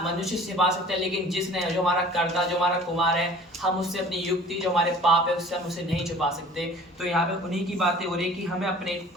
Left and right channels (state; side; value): normal; both; correlation 0.47